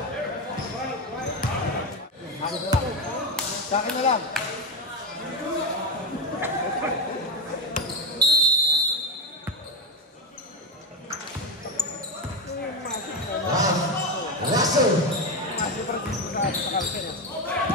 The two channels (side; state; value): both; normal; correlation 0.12